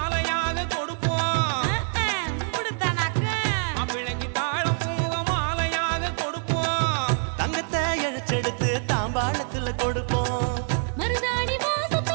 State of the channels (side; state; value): left; silent; 61 dB below the other